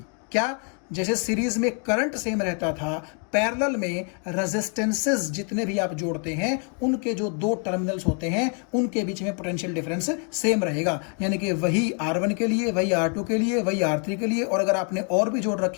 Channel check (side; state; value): right; quieter; 39.9 dB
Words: क्या, जैसे सीरीज में करंट सेम रहता था, पैरेलल में रेजिस्टेंसेस जितने भी आप जोड़ते हैं उनके जो दो टर्मिनल्स होते हैं उनके बीच में पोटेंशियल डिफरेंस सेम रहेगा। यानी कि वही R1 के लिए, वही R2 के लिए, वही R3 के लिए, और अगर आपने और भी जोड़